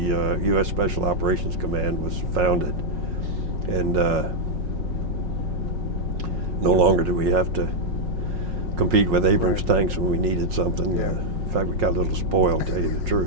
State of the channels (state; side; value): late; left; 5.5 ms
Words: U.S. Special Operations Command was founded. And no longer do we have to compete with Abrams tanks when we needed something. In fact, we got a little spoiled, to tell you the